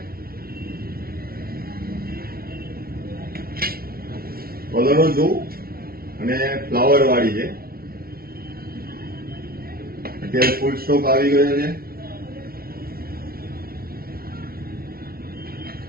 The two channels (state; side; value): late; left; 0.44 ms